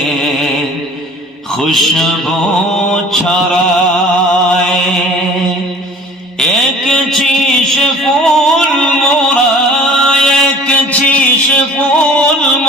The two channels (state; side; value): normal; both; correlation 0.47